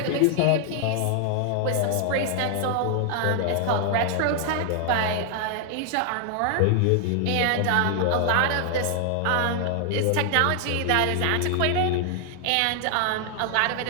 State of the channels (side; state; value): both; different; correlation 0.00